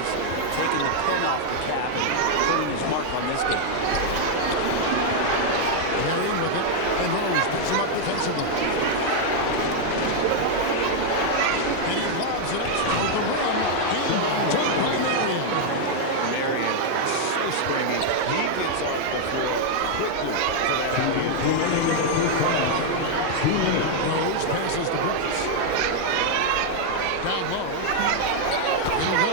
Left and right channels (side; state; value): both; different; correlation 0.00